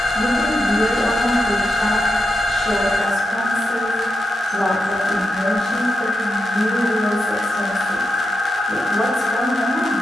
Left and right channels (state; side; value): normal; both; correlation 0.87